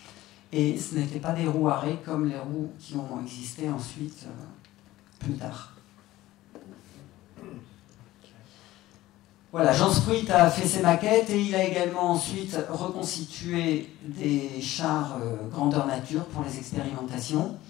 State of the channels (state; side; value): quieter; right; 16.3 dB